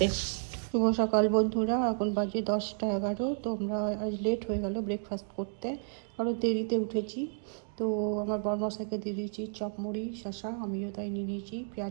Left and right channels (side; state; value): left; silent; digital silence